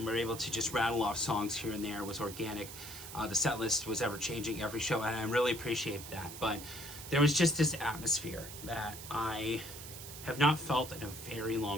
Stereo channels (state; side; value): noise; right; hiss, 12 dB below the sound